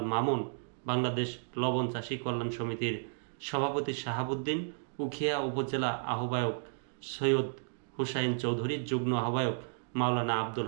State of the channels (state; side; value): silent; left; digital silence